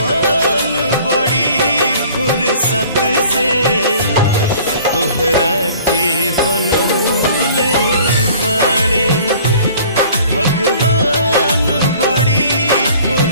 बड़ी फुर्सत से तोहरा के बनौले बाड़े। भगवान बड़ी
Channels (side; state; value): both; inverted; correlation -0.51